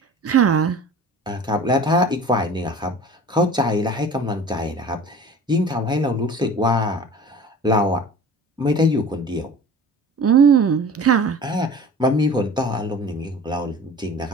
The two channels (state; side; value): normal; both; correlation 0.41